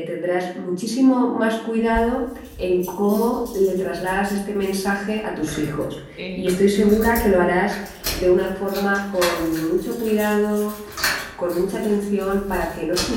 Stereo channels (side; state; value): both; identical; correlation 1.00